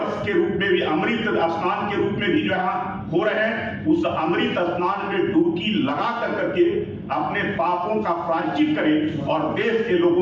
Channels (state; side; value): identical; both; correlation 1.00